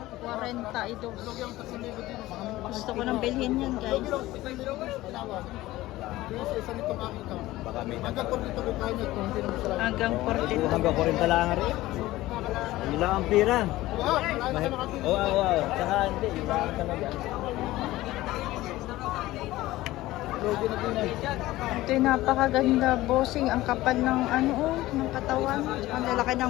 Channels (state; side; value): quieter; right; 17.1 dB